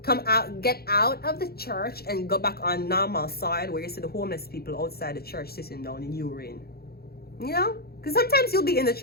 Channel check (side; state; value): right; late; 0.45 ms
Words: Come out, get out of the church and go back on normal side where you see the homeless people outside the church sitting down in urine. Because sometimes you'll be in the